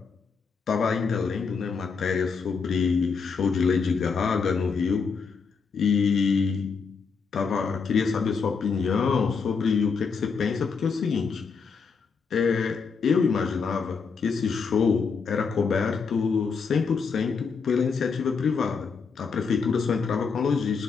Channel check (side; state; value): right; quieter; 5.4 dB